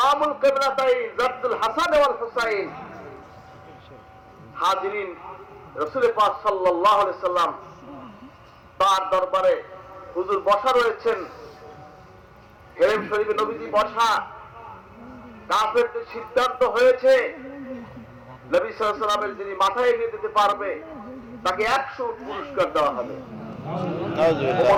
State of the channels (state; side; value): identical; both; correlation 1.00